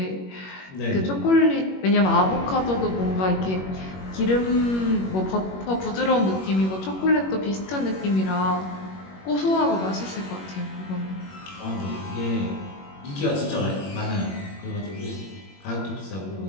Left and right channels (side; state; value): right; late; 21 ms